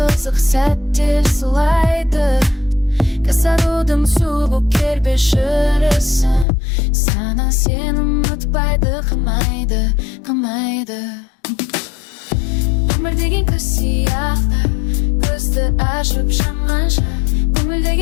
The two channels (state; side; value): drops out; right; at 6.5 s